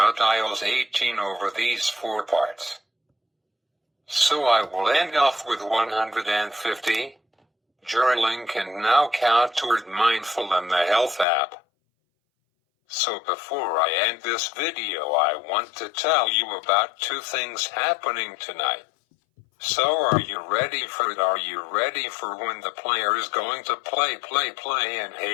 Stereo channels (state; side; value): drops out; right; at 11.2 s